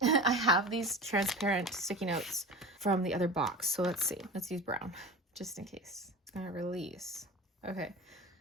I have these transparent sticky notes from the other box. So let's see. Let's use brown just in case. It's gonna release. Okay.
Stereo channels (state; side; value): normal; both; correlation 0.32